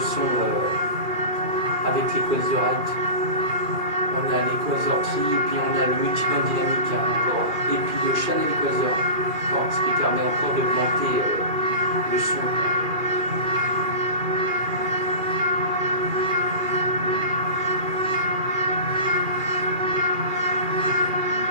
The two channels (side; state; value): left; late; 2.4 ms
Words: avec l'Equalizer Right. On a l'Equalizer Tri et puis on a le multiband dynamique, hein, encore. Et puis le Channel Equalizer, ce qui permet encore d'augmenter le son.